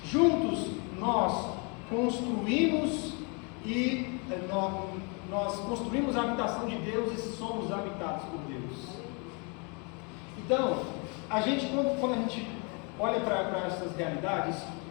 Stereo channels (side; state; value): right; quieter; 33.5 dB